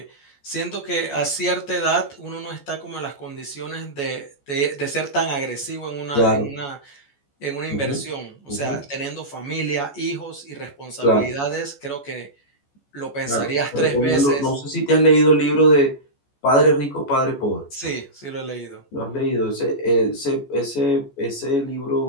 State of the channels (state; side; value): late; right; 14 ms